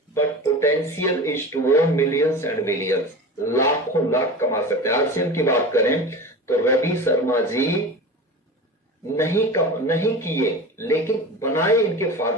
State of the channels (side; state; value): both; normal; correlation 0.32